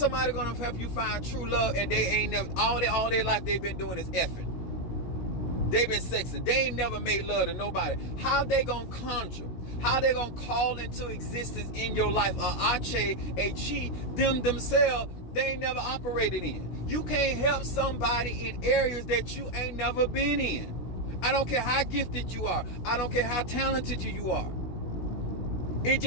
gonna help you find true love and they ain't never, all their life they've been doing is effing? They've been sexing. They ain't never made love to nobody. How they gonna conjure? How they gonna call into existence in your life a ache, a chi, them themselves, they ain't never operated in? You can't help somebody in areas that you ain't never been in. I don't care how gifted you are. I don't care how talented you are. It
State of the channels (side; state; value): right; late; 16 ms